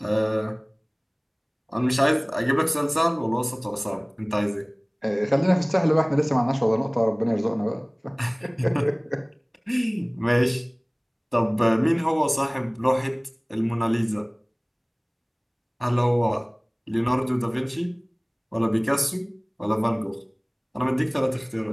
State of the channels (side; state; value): both; identical; correlation 1.00